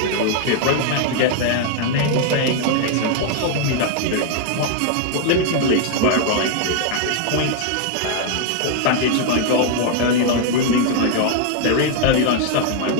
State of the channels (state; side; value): different; both; correlation 0.00